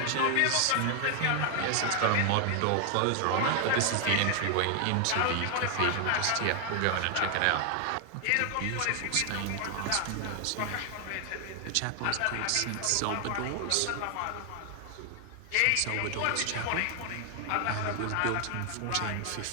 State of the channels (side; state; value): both; different; correlation 0.00